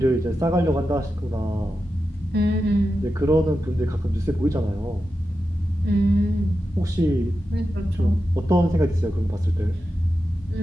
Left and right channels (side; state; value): both; normal; correlation 0.90